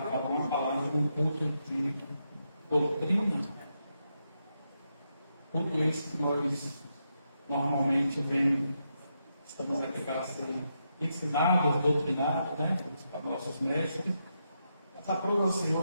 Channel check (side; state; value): both; inverted; correlation -0.83